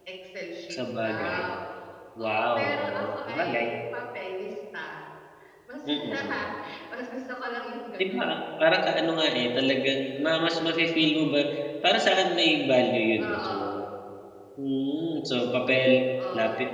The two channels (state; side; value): identical; both; correlation 1.00